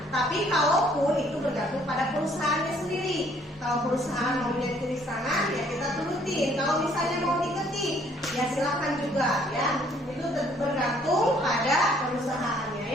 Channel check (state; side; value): normal; both; correlation 0.62